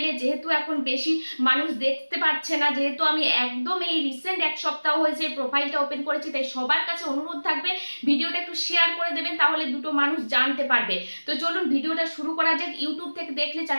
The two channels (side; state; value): both; inverted; correlation -1.00